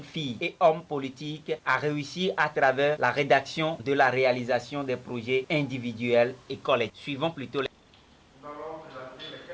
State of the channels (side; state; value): both; identical; correlation 1.00